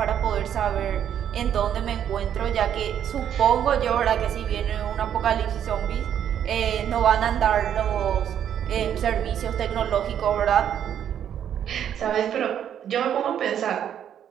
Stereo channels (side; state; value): left; quieter; 9.5 dB